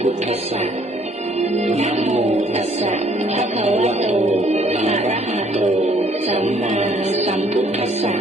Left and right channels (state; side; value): normal; both; correlation 0.62